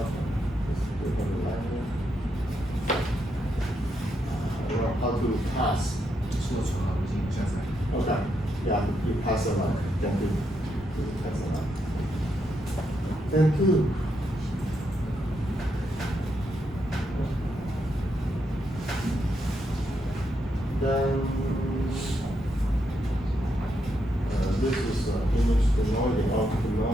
to pass. Okay, yeah, you pass a line. Thank you. Pass a line. Thank you. Then this is image denoising, output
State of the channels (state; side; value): normal; both; correlation 0.80